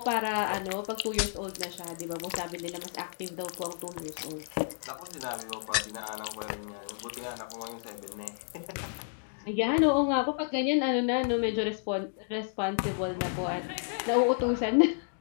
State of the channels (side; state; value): right; silent; digital silence